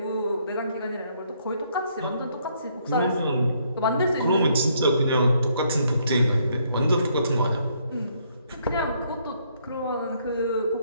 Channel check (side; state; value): both; inverted; correlation -0.70